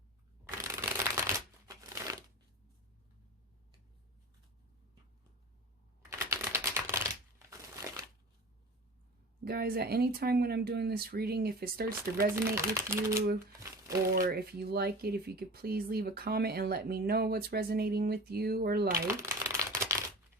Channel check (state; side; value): normal; both; correlation 0.35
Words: Guys, at any time when I'm doing this reading, if it starts to resonate with you or if you like it, if you could please leave a comment and let me know what's resonating with you or like.